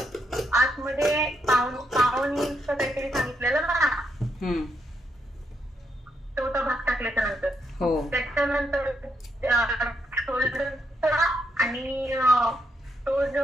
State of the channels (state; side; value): normal; both; correlation 0.79